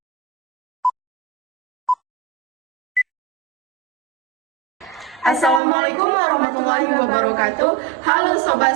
warahmatullahi wabarakatuh. Halo Sobat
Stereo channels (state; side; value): drops out; left; at 5.6 s